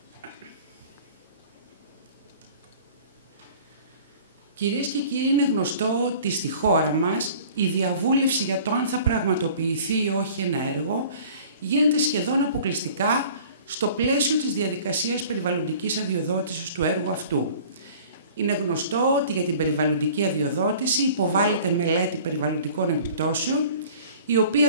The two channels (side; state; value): both; inverted; correlation -0.47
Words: Κυρίες και κύριοι, είναι γνωστό ότι στη χώρα μας η διαβούλευση για το αν θα πραγματοποιηθεί ή όχι ένα έργο γίνεται σχεδόν αποκλειστικά στο πλαίσιο της διαδικασίας περιβαλλοντικής αδειοδότησης του έργου αυτού. Είναι γνωστό ότι για την περιβαλλοντική αδειοδότηση υποβάλλεται μελέτη περιβαλλοντικών επιπτώσεων, η